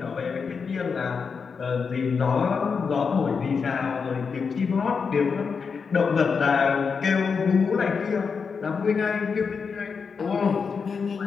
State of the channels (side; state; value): right; quieter; 5.6 dB